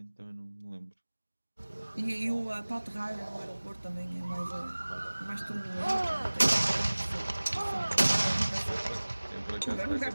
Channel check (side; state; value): both; inverted; correlation -1.00